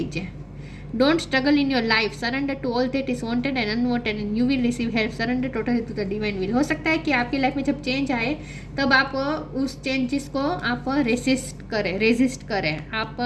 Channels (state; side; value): identical; both; correlation 1.00